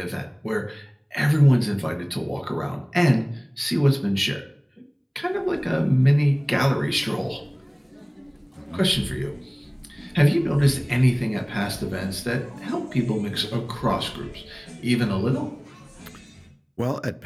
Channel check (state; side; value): identical; both; correlation 1.00